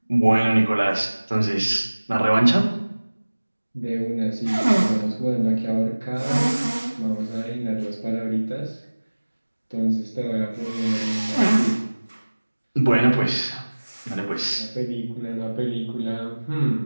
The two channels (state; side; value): inverted; both; correlation -1.00